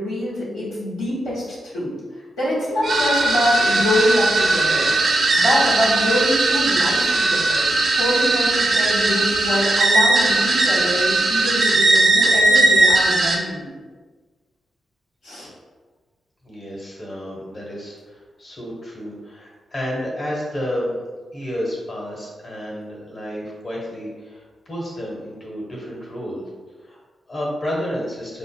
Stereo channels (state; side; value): normal; both; correlation 0.85